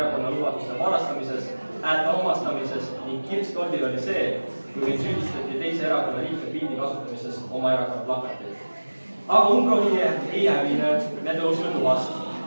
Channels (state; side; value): inverted; both; correlation -1.00